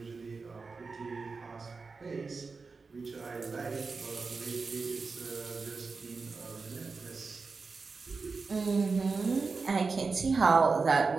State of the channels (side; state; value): left; quieter; 4.4 dB